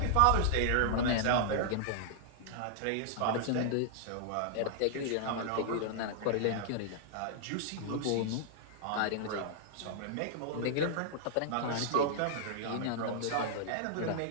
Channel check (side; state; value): both; different; correlation -0.01